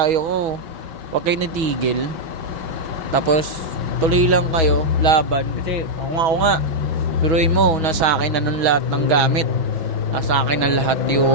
ko, huwag kayo natigil. Tapos tuloy lang kayo, laban. Kasi ako nga, biruin mo, nasa akin na nun lahat ng gamit. Nasa akin na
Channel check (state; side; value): late; left; 6.2 ms